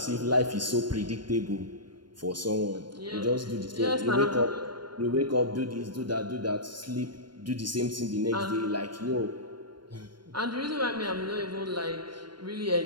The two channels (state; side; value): late; left; 0.72 ms